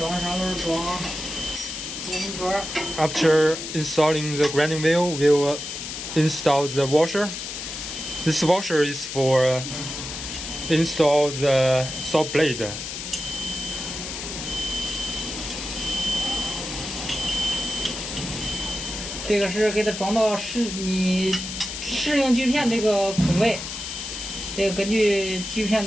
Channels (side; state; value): left; noise; hiss, 7 dB below the sound